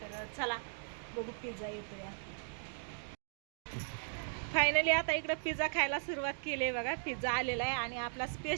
तर चला बघू पिझ्झा येतो या. फायनली आता इकडं पिझ्झा खायला सुरुवात केली आहे बघा. पिझ्झा आलेला आहे आणि आपला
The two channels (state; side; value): silent; left; digital silence